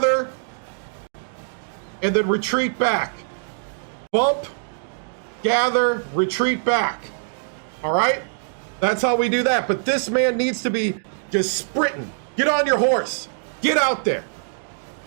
and then retreat back. Bump, gather, retreat back. All right? That's how we do that. But this man needs to be just sprinting. Get on your horse. Get out there.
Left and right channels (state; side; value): silent; left; digital silence